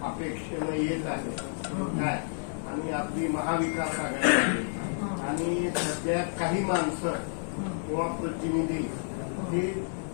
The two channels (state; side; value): silent; right; digital silence